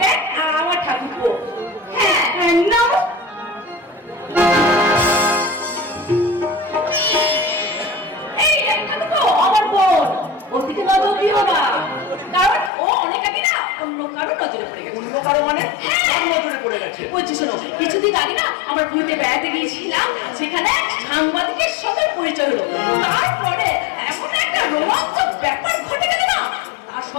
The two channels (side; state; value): right; drops out; at 12.7 s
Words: দেখ আমার ঠাকুরপো। হ্যাঁ, নাও। দুঃখী হবা, কারণ ও অনেক আগে না অন্য কারো নজরে পড়ে গেছে। অন্য কারো মানে কার নজরে পড়ে গেছে? বলছি শোনো, কিছুদিন আগে না আমার ঘুরতে বেড়াতে গিয়েছিলাম, সেখানে সাংবাদিকের সাথে পরিচয় হলো। তারপরে এমন একটা রোমাঞ্চক ব্যাপার ঘটে গেল না, আর